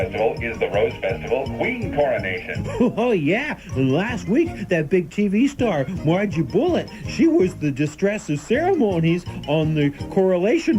is the Rose Festival Queen Coronation. Oh, yeah. And last week, that big TV star, Margie Bullitt, she was the distress of ceremonies on the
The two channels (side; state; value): both; identical; correlation 1.00